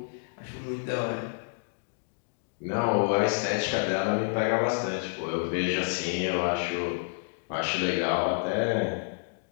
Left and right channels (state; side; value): silent; right; digital silence